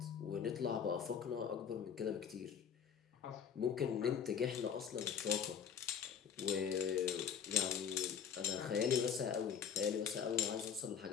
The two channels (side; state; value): right; quieter; 7.6 dB